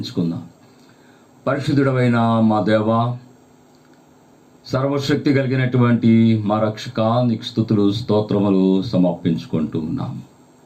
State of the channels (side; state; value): both; identical; correlation 1.00